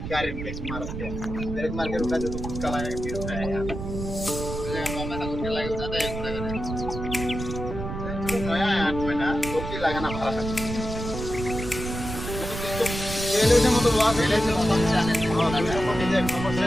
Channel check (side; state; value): right; noise; rumble, 6 dB below the sound